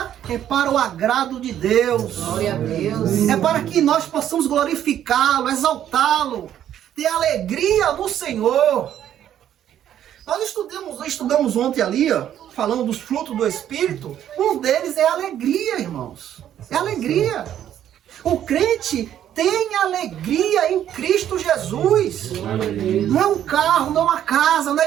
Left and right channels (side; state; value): left; quieter; 10.7 dB